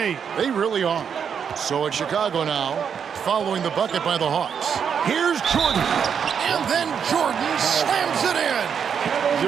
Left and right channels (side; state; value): left; quieter; 7.3 dB